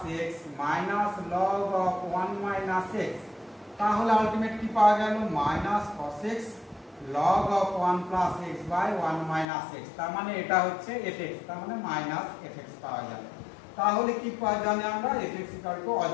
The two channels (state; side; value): drops out; right; at 9.5 s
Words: x minus log of 1 minus x, তাহলে আলটিমেট কি পাওয়া গেল, minus cos x log of 1 plus x by 1 minus x, তার মানে এটা হচ্ছে fx, তার মানে মাইনাস fx পাওয়া গেল, তাহলে কি পাওয়া জানি আমরা, fx ইকুয়াল টু